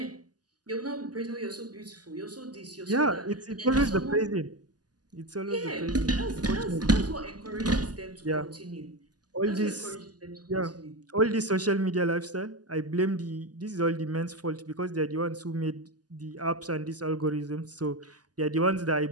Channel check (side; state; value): left; late; 0.69 ms